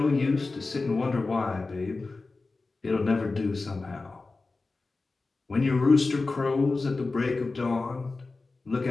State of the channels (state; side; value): quieter; right; 3.7 dB